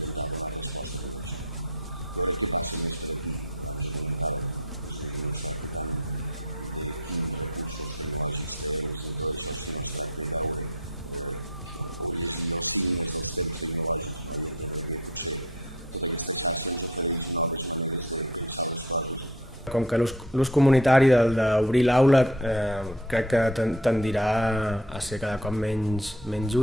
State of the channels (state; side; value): normal; both; correlation 0.42